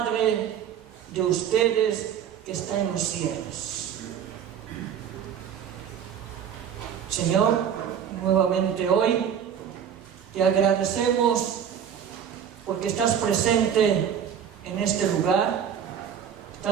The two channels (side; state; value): left; quieter; 8.6 dB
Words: de ustedes que está en los cielos. Señor, nuevamente hoy te agradecemos porque estás presente en este lugar,